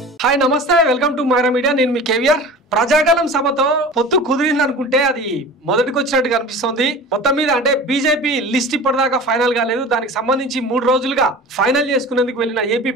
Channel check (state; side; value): normal; both; correlation 0.37